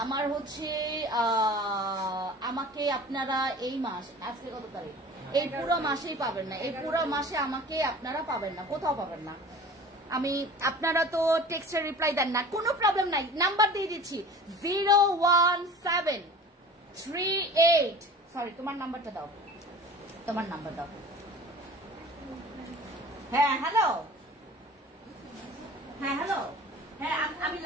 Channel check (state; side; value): normal; both; correlation 0.41